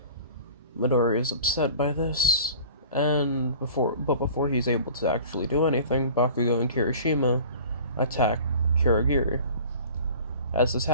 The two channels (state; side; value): inverted; both; correlation -0.43